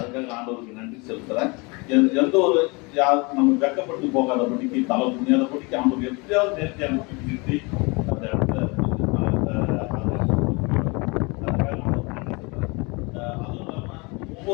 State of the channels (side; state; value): right; quieter; 28.4 dB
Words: ஆண்டவருக்கு நன்றி செலுத்துறேன். எந்த ஒரு நம்ம வெக்கப்பட்டு போகாதபடிக்கு தலை புண்ணியாதபடிக்கு ஆண்டவர் எப்படியாவது நேர்த்தி அனுப்பி நிறுத்தி அந்த இடத்துல அதுவும் இல்லாமல்